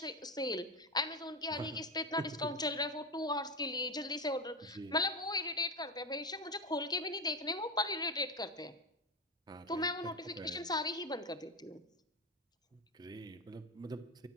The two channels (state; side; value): normal; both; correlation 0.15